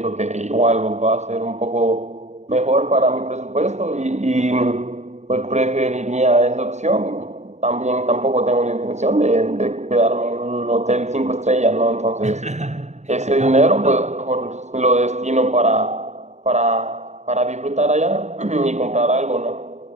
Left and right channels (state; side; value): late; left; 0.33 ms